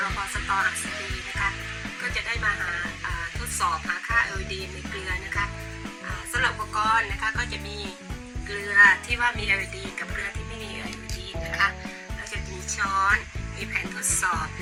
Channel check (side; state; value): both; identical; correlation 1.00